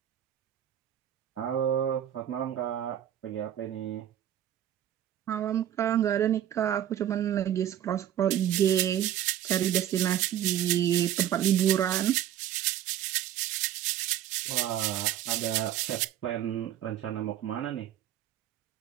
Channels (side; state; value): left; quieter; 11.2 dB